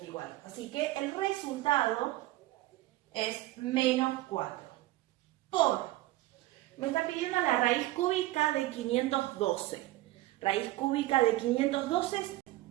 Así que el resultado es menos 4. Me está pidiendo la raíz cúbica de 512. Raíz cúbica de 512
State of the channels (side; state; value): left; quieter; 17.3 dB